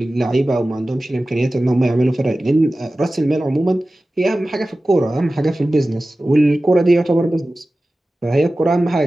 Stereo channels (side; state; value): both; normal; correlation 0.96